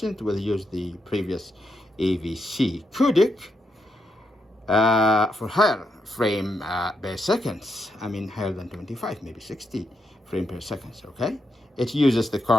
it will use the previous AVC codec for higher frame per seconds. I mean higher than 25, maybe 60 frame per second. Okay, it uses the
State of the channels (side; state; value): both; normal; correlation 0.82